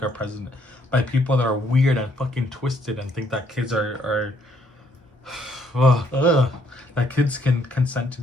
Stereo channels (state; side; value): normal; both; correlation 0.68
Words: our president, by people that are weird and fucking twisted and think that kids are that kids can consent to